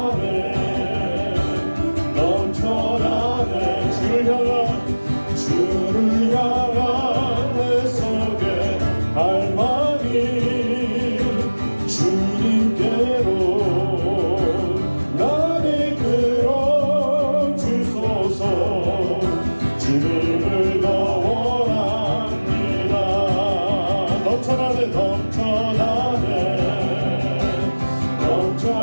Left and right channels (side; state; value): both; inverted; correlation -1.00